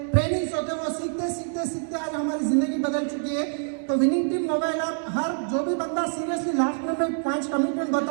ट्रेनिंग्स होते हैं, वो सीखते आज हमारी जिंदगी बदल चुकी है। तो विनिंग टीम मोबाइल ऐप, हर जो भी बंदा सीरियसली, लास्ट में मैं 5 कमिटमेंट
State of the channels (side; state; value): left; silent; 58 dB below the other